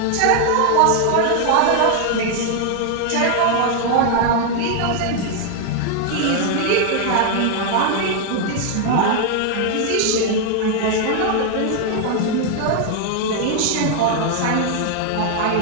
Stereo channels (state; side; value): different; both; correlation 0.00